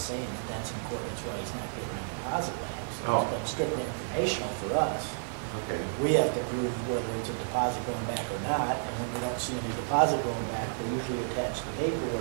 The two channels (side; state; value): left; silent; digital silence